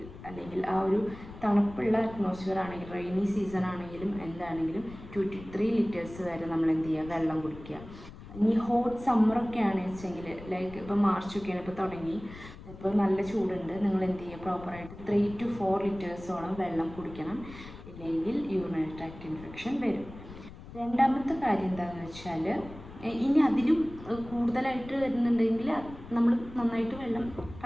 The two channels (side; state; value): left; noise; rumble, 16 dB below the sound